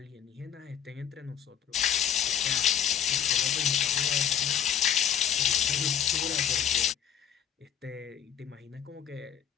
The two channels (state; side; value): quieter; right; 9.3 dB